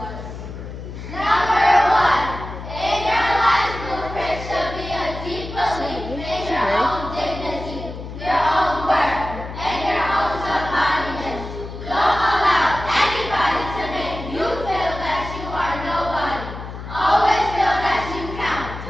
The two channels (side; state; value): left; noise; hum, 10 dB below the sound